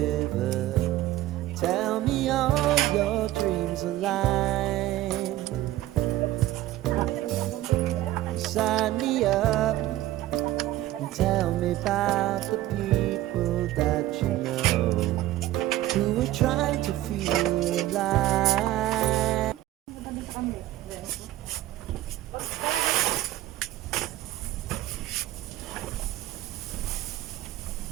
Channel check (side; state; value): left; quieter; 15.0 dB